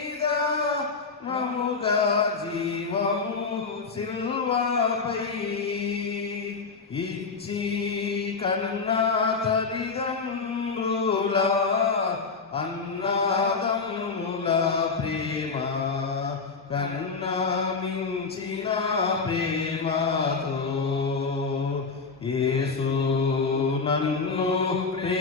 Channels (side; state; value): right; quieter; 4.6 dB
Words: మముగా జీవము సిల్వపై ఇచ్చి కన్నా తల్లిదండ్రుల అన్నదమ్ముల ప్రేమ కన్నా మించిన ప్రేమతో యేసు నన్ను